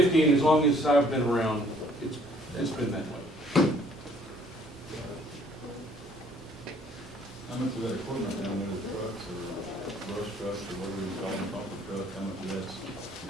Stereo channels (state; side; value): normal; both; correlation 0.60